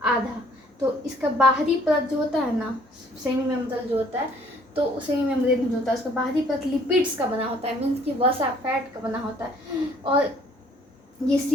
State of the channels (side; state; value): both; normal; correlation 0.59